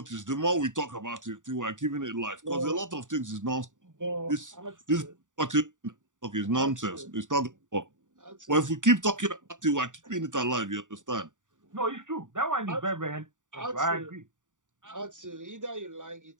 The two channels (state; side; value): late; left; 0.87 ms